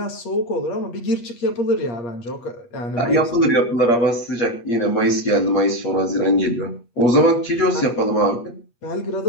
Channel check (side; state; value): right; late; 8.4 ms